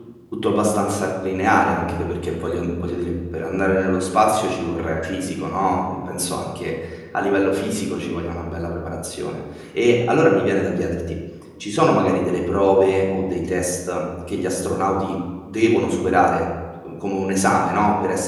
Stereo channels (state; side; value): identical; both; correlation 1.00